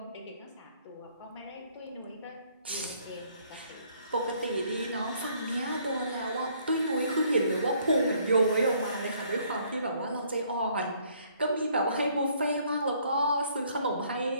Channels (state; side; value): inverted; both; correlation -0.64